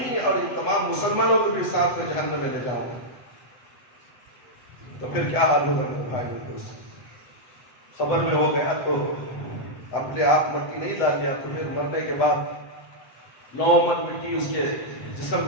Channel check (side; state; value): right; late; 7.9 ms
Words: اور ان تمام مسلمانوں کو بھی ساتھ میں جہنم میں لے جاؤں گا. تو پھر کیا حال ہوگا میرے بھائی دوست؟ خبر میں وہ گیا تو اپنے آپ مٹی نہیں ڈال لیا، تو پھر مرنے کے بعد 9 من مٹی اس کے جسم